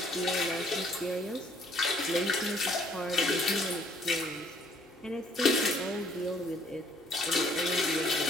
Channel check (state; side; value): normal; both; correlation 0.62